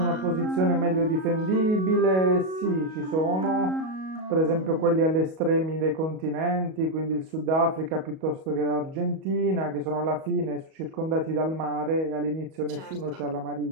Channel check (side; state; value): left; late; 38 ms